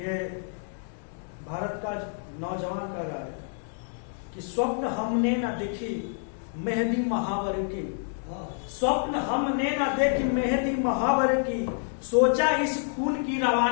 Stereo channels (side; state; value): right; silent; digital silence